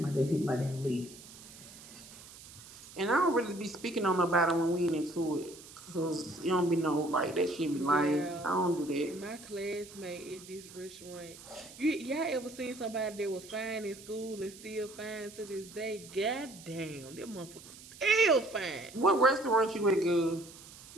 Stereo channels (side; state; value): right; noise; hiss, 18 dB below the sound